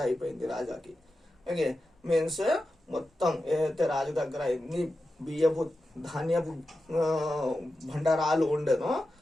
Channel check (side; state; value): both; normal; correlation 0.91